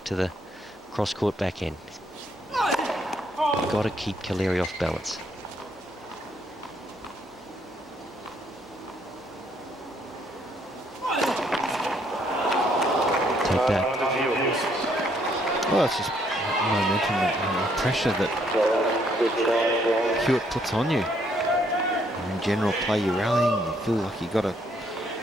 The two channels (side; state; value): both; normal; correlation 0.69